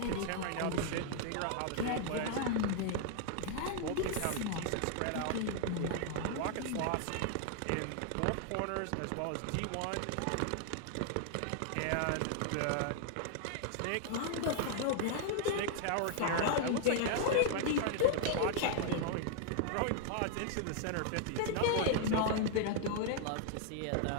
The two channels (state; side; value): different; both; correlation 0.00